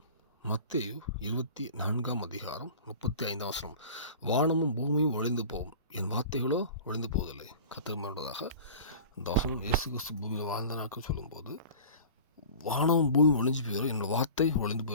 மத்தேயு 24 அதிகாரம் 35 வசனம். வானமும் பூமியும் ஒழிந்து போகும், என் வார்த்தைகளோ ஒழிந்து போவதில்லை. கர்த்தர் வாழ்ந்ததாக இந்த வசனம் இயேசு கிறிஸ்து பூமியில் வாழ்ந்த நாட்கள் சொல்லும்போது வானமும் பூமியும் ஒழிஞ்சு போயிடும், என்னோடய வார்த்தை ஒழிந்து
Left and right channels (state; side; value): inverted; both; correlation -0.40